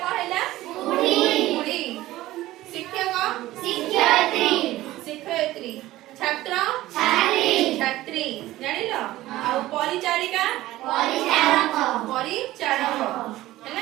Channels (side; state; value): left; quieter; 16.3 dB